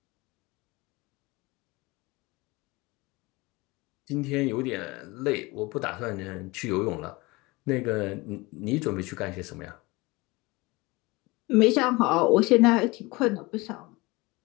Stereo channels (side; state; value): right; quieter; 23.2 dB